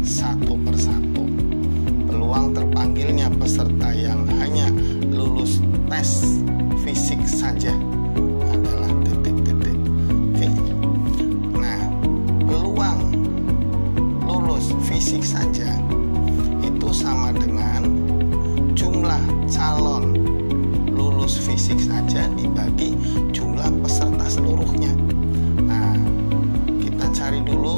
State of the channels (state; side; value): inverted; both; correlation -1.00